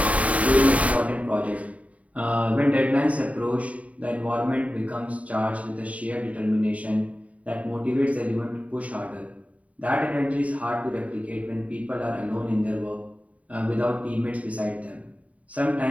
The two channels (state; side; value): late; left; 0.068 ms